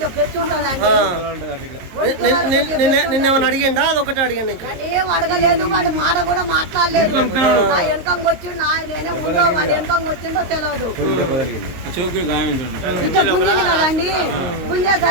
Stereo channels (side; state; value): left; late; 22 ms